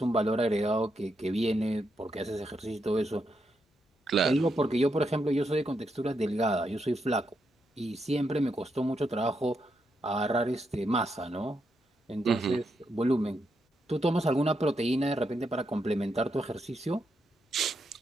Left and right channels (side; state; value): both; normal; correlation 0.82